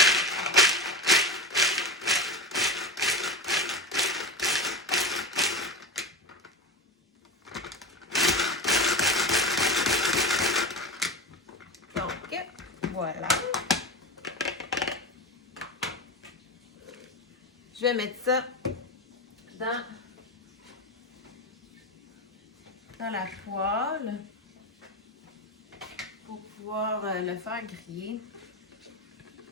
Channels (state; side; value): normal; both; correlation 0.23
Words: Donc, voilà. Je vais mettre ça dans la poêle pour pouvoir le faire griller.